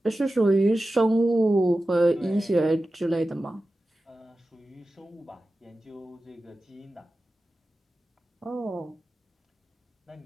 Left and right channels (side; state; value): both; normal; correlation 0.94